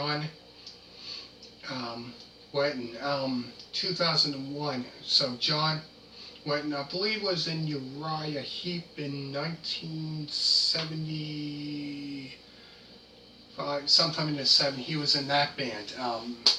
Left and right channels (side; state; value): both; identical; correlation 1.00